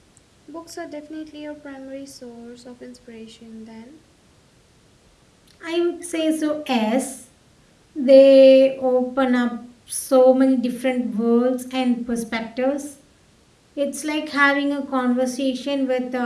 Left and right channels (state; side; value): identical; both; correlation 1.00